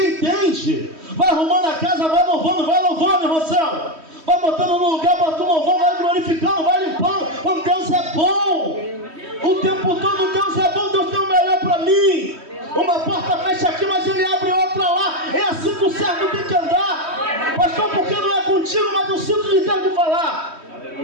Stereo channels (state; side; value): late; left; 3.1 ms